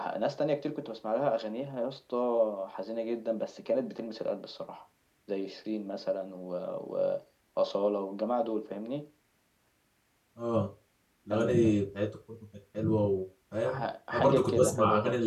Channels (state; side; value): identical; both; correlation 1.00